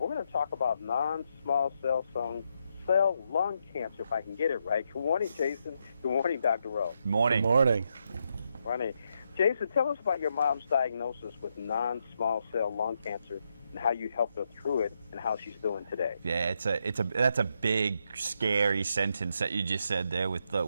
going to talk about non-small cell lung cancer, if I can get it right. Good morning, Jason. Good morning, Dr. Rowe. Morning. Good morning. Morning. Jason, tell us about your mom's diagnosis with non-small cell lung cancer and how you helped her through it and how she's doing today. Yeah, that's a big, scary sentence that you just said there with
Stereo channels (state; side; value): inverted; both; correlation -0.80